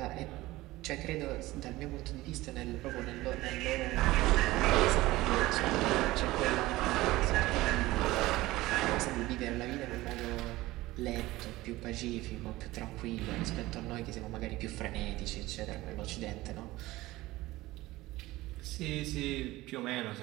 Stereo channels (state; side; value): quieter; left; 18.4 dB